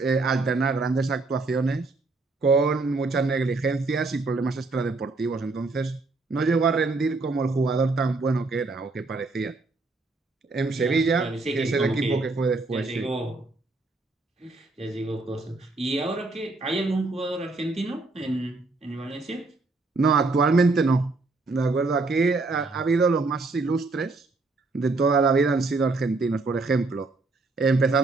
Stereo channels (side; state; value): left; quieter; 3.5 dB